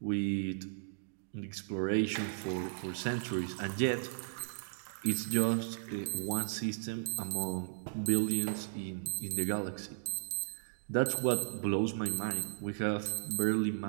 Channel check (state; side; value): silent; left; digital silence